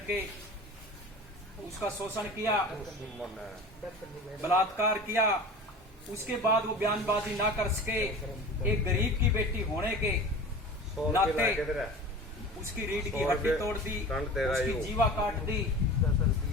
उसका शोषण किया, बलात्कार किया। उसके बाद वो बयानबाजी ना कर सके, एक गरीब की बेटी होने के नाते उसकी रीढ़ की हड्डी तोड़ दी, उसकी जीवा काट दी,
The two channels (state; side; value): normal; both; correlation 0.36